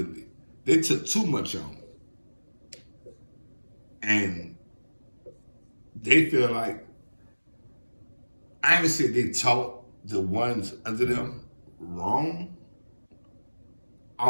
They took too much on. And they feel like, I ain't gonna say they taught the ones under them wrong.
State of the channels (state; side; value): inverted; both; correlation -1.00